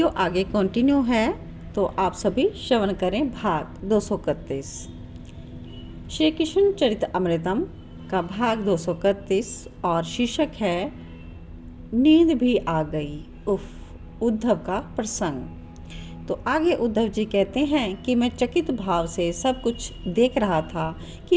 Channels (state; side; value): identical; both; correlation 1.00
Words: आगे कंटिन्यू है तो आप सभी श्रवण करें भाग 231 श्री कृष्ण चरित अमृतम का भाग 231 और शीर्षक है नींद भी आ गई। उफ, उद्धव का प्रसंग। तो आगे उद्धव जी कहते हैं कि मैं चकित भाव से सब कुछ देख रहा था